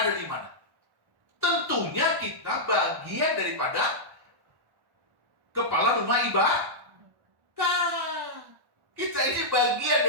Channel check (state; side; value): late; left; 1.1 ms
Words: di mana? Tentunya kita bagian daripada kepala rumah ibadah. Kita ini bagian